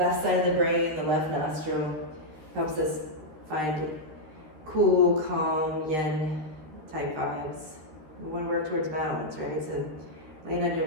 side of the brain, the left nostril. Helps us find cool, calm, yin type vibes. We want to work towards balance, right? So laying on your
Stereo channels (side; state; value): left; late; 13 ms